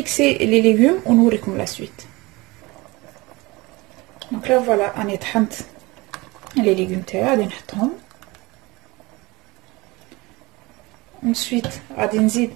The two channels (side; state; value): left; quieter; 23.1 dB